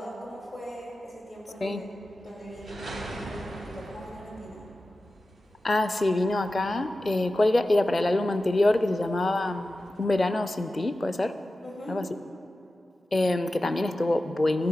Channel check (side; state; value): both; normal; correlation 0.94